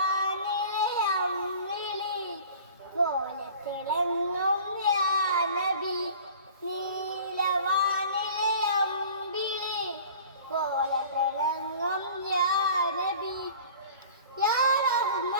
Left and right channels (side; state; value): both; inverted; correlation -0.44